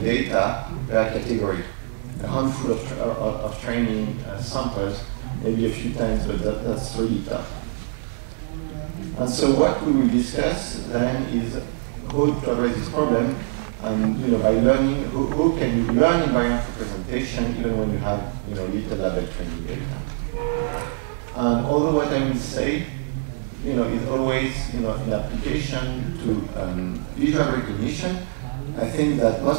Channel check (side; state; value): left; silent; digital silence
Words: per category. A handful of training samples, maybe a few times, but that's really tough. And so what we will discuss then is how to address this problem, and by learning, how can you learn invariant representation even when you have little label training data. And although what I will say is always in application to visual recognition, I think that